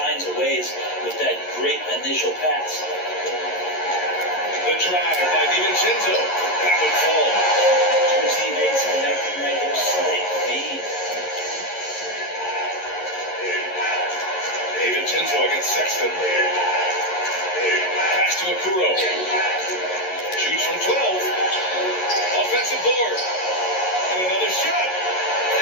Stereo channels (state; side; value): late; right; 11 ms